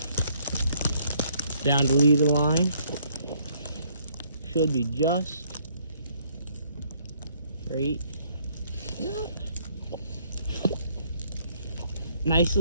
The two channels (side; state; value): both; inverted; correlation -0.66